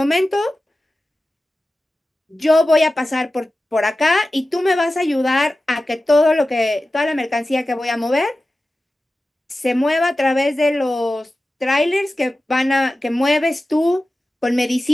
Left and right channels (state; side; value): normal; both; correlation 0.95